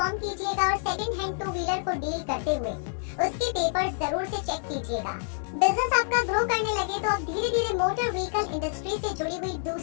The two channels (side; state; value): right; silent; 60 dB below the other